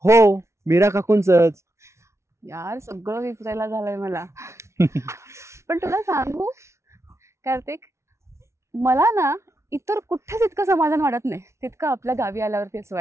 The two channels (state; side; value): late; left; 0.13 ms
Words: हो, मीरा काकूंचंच. यार, सगळं विसरायला झालंय मला. पण तुला सांगू कार्तिक, मला ना इतर कुठेच इतकं समाधान वाटत नाही तितकं आपल्या गावी आल्यावरती असं